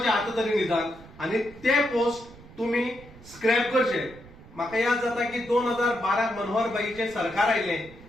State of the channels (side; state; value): right; noise; rumble, 20 dB below the sound